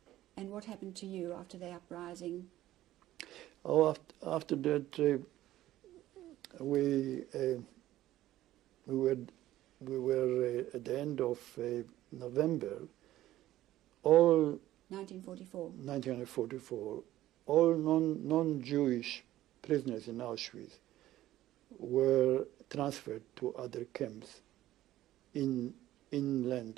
and what happened to you after the uprising? Oh, after that, we were at the end of November. All 1944. All non-Jewish prisoners in Auschwitz were transferred to other camps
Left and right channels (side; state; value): left; quieter; 14.5 dB